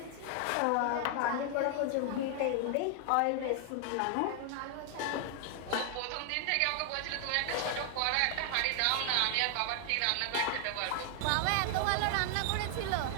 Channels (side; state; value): both; different; correlation 0.00